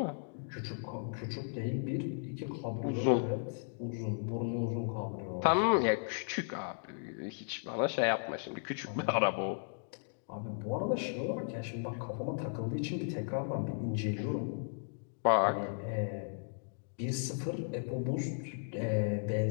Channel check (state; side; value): silent; right; digital silence